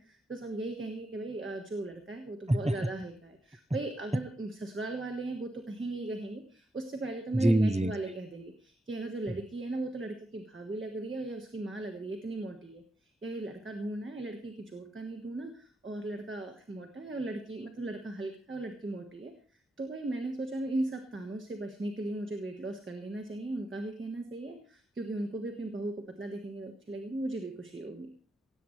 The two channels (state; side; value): normal; both; correlation 0.84